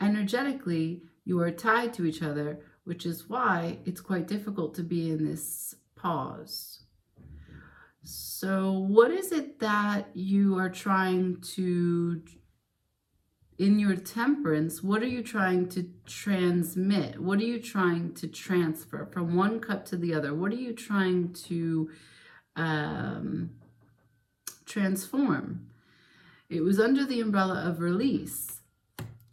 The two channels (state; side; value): identical; both; correlation 1.00